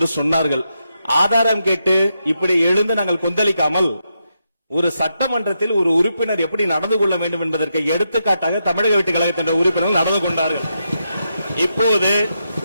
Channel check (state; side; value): inverted; both; correlation -0.84